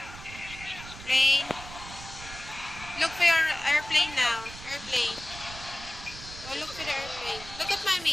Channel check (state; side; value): noise; right; rumble, 14 dB below the sound